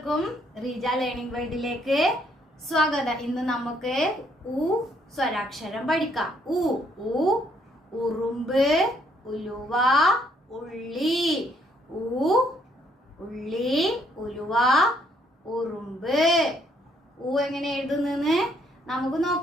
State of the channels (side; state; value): both; normal; correlation 0.69